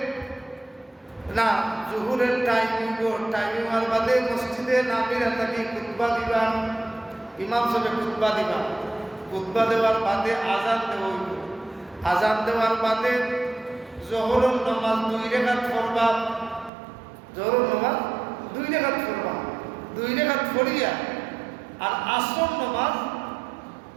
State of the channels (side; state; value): left; drops out; at 16.7 s